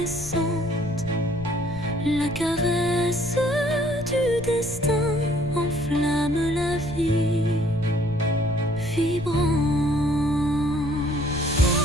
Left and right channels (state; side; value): noise; left; rumble, 13 dB below the sound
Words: La caresse du destin enflamme la vie vibrante.